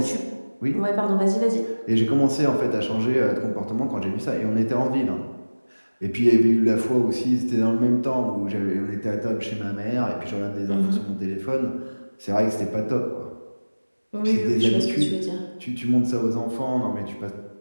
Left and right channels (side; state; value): both; inverted; correlation -1.00